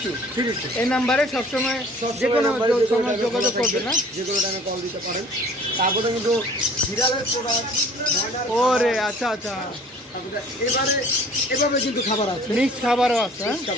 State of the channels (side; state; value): both; normal; correlation 0.51